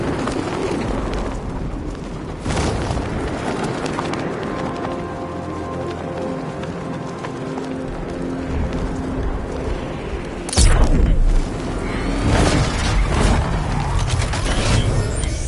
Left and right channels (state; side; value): identical; both; correlation 1.00